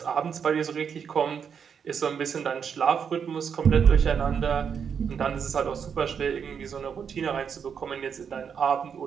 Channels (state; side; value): quieter; left; 7.1 dB